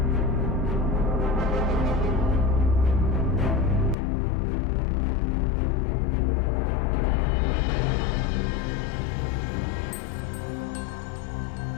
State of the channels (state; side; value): drops out; right; at 4.0 s